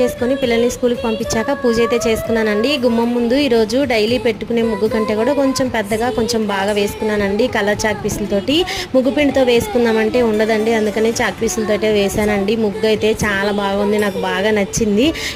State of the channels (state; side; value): identical; both; correlation 1.00